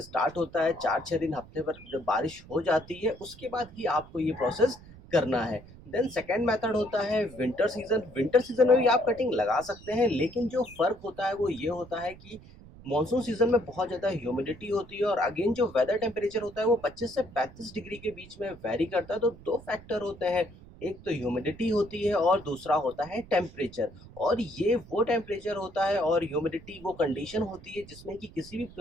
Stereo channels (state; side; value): noise; right; rumble, 20 dB below the sound